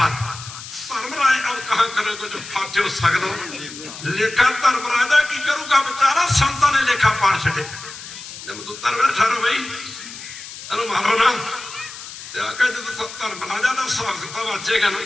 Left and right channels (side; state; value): left; noise; hiss, 13 dB below the sound